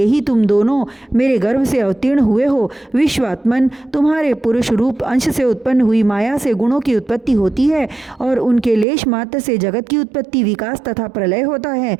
ही तुम दोनों मेरे गर्भ से अवतीर्ण हुए हो। विश्वात्मन, तुम्हारे पुरुष रूप अंश से उत्पन्न हुई माया से गुणों की उत्पत्ति होती है और उनके लेश मात्र से जगत की उत्पत्ति, विकास तथा प्रलय होता है।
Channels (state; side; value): drops out; left; at 8.8 s